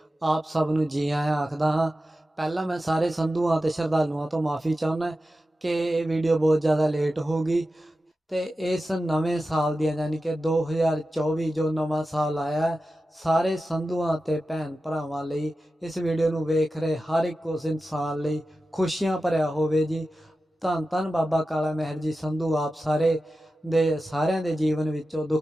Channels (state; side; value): normal; both; correlation 0.93